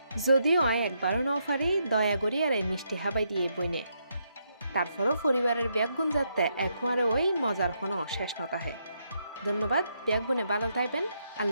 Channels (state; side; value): inverted; both; correlation -0.78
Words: যদিও আয় একবারও ন পারি দয়া করি আর এই মিষ্টি হাবাই দিয়ে বইনে তারপরও পরিবারের ব্যাগগুণ যাতে একবারে ওই মজার কোনো শেষ নতাহে ধন্যবাদ ব্যাগগুণে ভালো থাকবেন